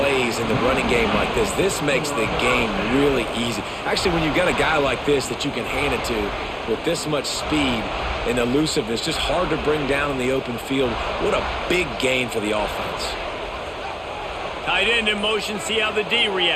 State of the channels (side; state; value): both; identical; correlation 1.00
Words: in the running game like this. This makes the game really easy. Actually, when you've got a guy like this that you can hand it to with this much speed and elusiveness, just hard to bring down in the open field. What a big gain for the offense. Tight end in motion, see how the D